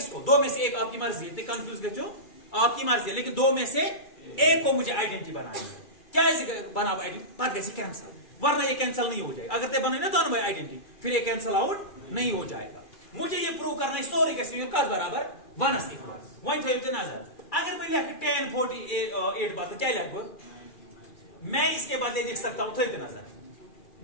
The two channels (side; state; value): right; late; 2.4 ms